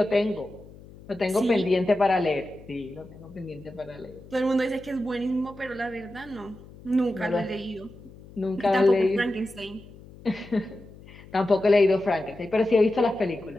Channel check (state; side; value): noise; left; hum, 20 dB below the sound